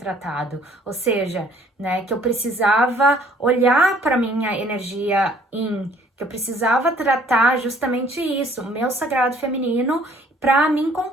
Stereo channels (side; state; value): both; normal; correlation 0.59